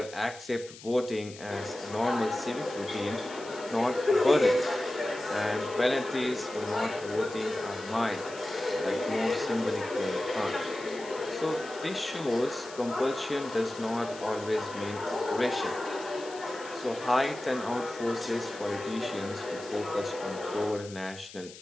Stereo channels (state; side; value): noise; left; hiss, 17 dB below the sound